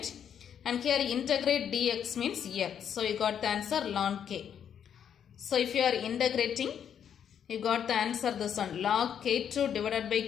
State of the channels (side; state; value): right; quieter; 8.6 dB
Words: And here integrate dx means x. So you got the answer ln k. So if you are integrating, you got the answer this one. Log k2 divided by